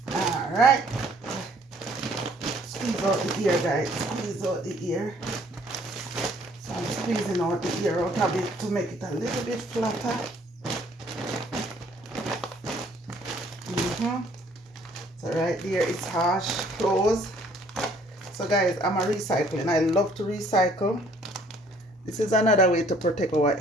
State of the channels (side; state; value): both; normal; correlation 0.60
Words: Alright. Squeeze out the ear guys, squeeze out the ear. So I'm squeezing out the ear out of it to make it a little bit flatter. So right there it's harsh, close. So guys, I'm a recycling. I love to recycle. This is another way to protect our